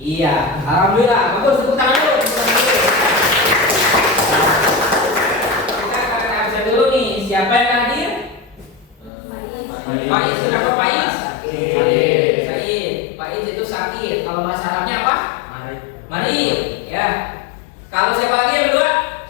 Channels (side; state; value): right; drops out; at 9.1 s